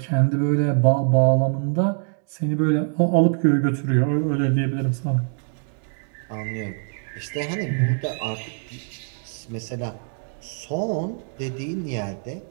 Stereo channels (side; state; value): left; silent; 58 dB below the other